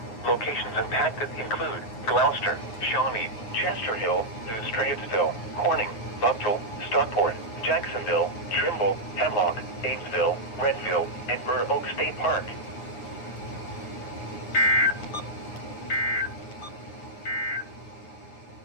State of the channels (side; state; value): right; late; 9.2 ms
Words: Locations impacted include Gloucester, Shawnee, Chester Hill, New Straitsville, Corning, Buckville, Stockport, Jacksonville, Trimble, Hemlock, Amesville, Redville, and Burr Oak State Park.